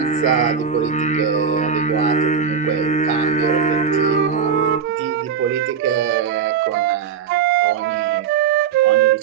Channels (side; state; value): left; quieter; 6.9 dB